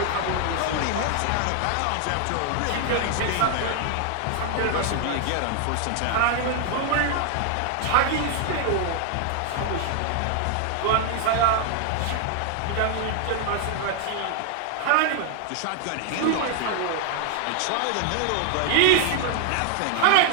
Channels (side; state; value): both; different; correlation 0.00